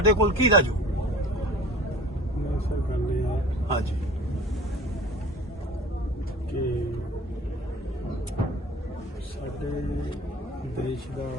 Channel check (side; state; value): both; normal; correlation 0.44